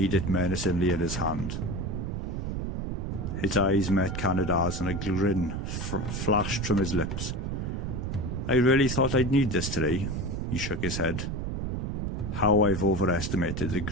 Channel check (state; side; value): noise; right; rumble, 3 dB below the sound